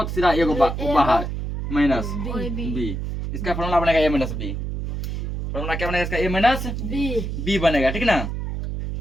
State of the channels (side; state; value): right; noise; hum, 4 dB below the sound